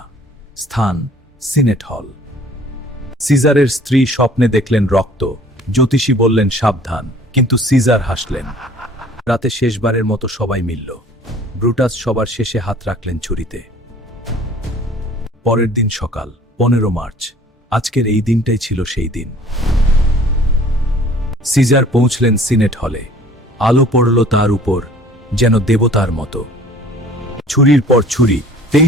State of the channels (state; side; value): normal; both; correlation 0.52